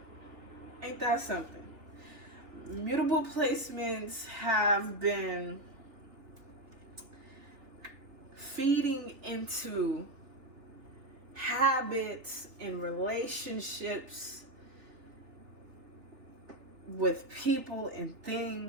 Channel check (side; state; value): left; late; 3.3 ms